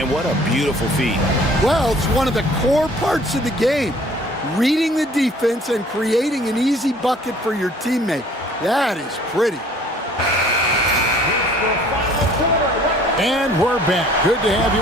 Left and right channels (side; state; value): both; normal; correlation 0.54